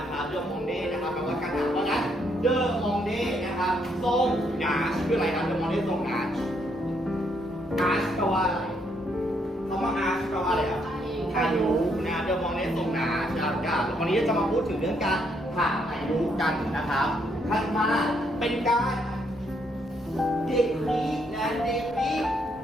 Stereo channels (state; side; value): normal; both; correlation 0.73